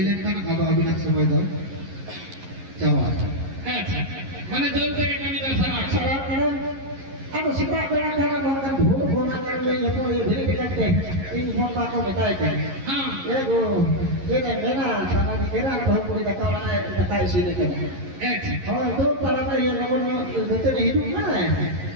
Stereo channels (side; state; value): left; late; 11 ms